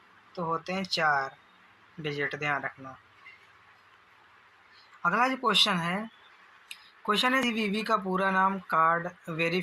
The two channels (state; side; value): identical; both; correlation 1.00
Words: तो होते हैं 4 डिजिट, ध्यान रखना। अगला जो क्वेश्चन है सीवीवी का पूरा नाम कार्ड